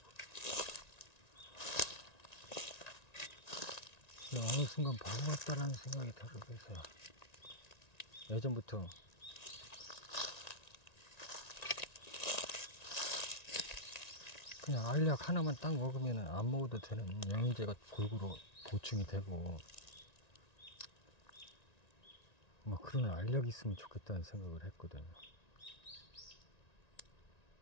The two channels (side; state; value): right; late; 1.9 ms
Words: 그냥 어느 순간 바보 같다라는 생각이 들어서 예전부터 그냥 알약 하나만 딱 먹으면 안 먹어도 되는 영양제가 골고루 보충이 되고 그런 알약이 있으면 좋겠다는 생각을 했거든.